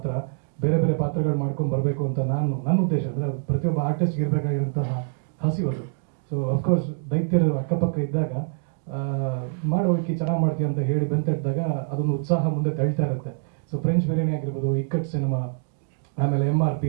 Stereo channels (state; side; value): silent; left; 62 dB below the other